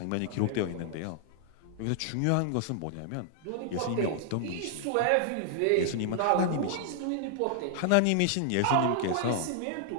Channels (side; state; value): both; different; correlation -0.01